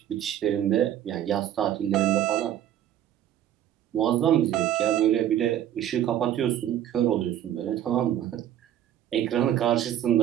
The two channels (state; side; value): quieter; left; 11.3 dB